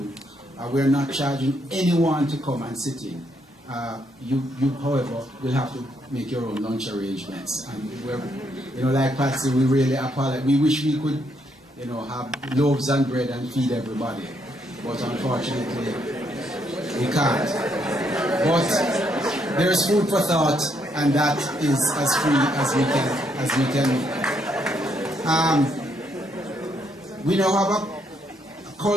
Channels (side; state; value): both; normal; correlation 0.75